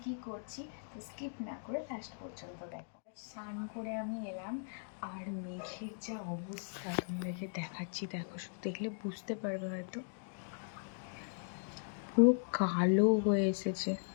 কি করছি, তো স্কিপ না করে লাস্ট পর্যন্ত দেখো। স্নান করে আমি এলাম আর মেঘের যা অবস্থা তোমাদেরকে দেখাচ্ছি, দেখো, দেখলে বুঝতে পারবে হয়তো। পুরো কালো হয়ে এসেছে।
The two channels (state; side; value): silent; right; digital silence